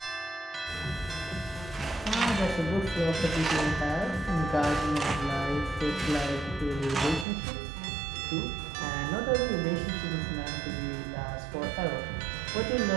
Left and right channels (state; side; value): drops out; left; at 7.2 s